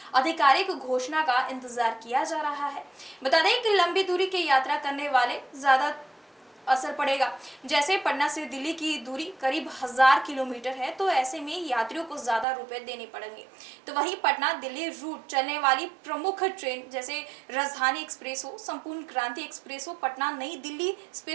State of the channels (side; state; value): left; drops out; at 12.5 s